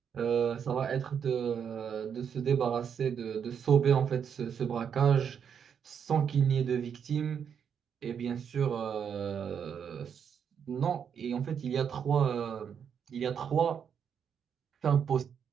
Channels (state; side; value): quieter; left; 7.6 dB